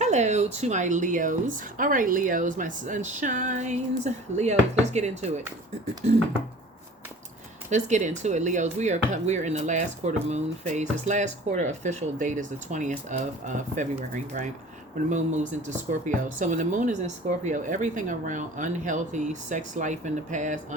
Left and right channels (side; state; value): both; normal; correlation 0.44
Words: to my Leos. All right, Leos, my sunshines. Leos, let's get into it. Let's get into it, Leos. We are in the last quarter moon phase. This last quarter official date is the 20th of February, right? When the moon moves into Scorpio. So when the moon is in Scorpio, everything around unhealthy sex life in the past,